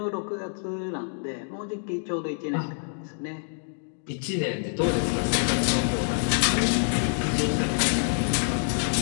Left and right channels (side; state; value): right; silent; 60 dB below the other